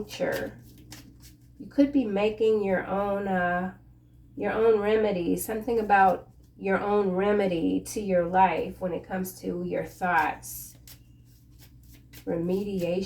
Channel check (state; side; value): identical; both; correlation 1.00